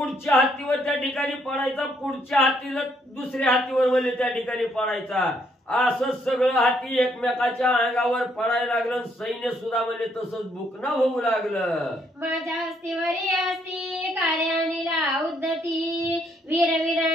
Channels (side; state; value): both; normal; correlation 0.71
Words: हत्तीवर त्या ठिकाणी पडायचा. पुढच्या हत्तीला दुसऱ्या हत्तीवर म्हणजे त्या ठिकाणी पडायचा. असं सगळं हाती एकमेकाच्या अंगावर पडायला लागलं. सैन्य सुद्धा म्हणजे तसंच बुकणं होऊ लागलं. माझ्या हस्तीवरी असती कार्यानीला उद्धती. वीर